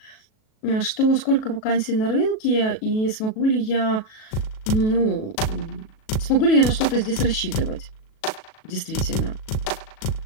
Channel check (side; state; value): right; late; 37 ms